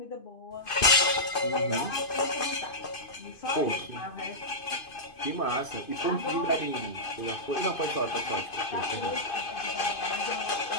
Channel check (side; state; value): right; late; 2.5 ms